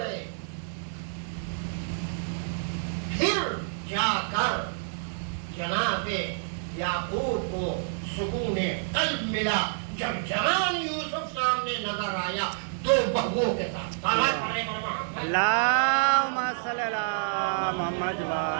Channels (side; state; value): left; silent; digital silence